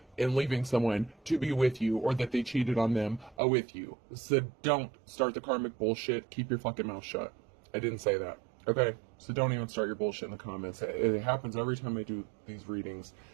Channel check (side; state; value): left; drops out; at 3.4 s